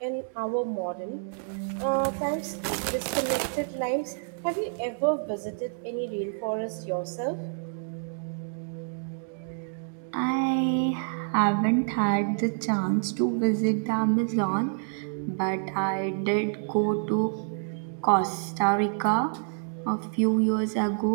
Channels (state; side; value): silent; left; digital silence